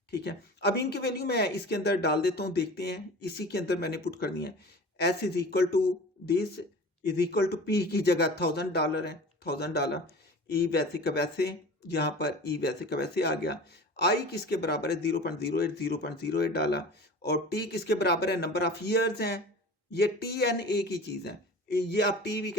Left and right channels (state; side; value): normal; both; correlation 0.38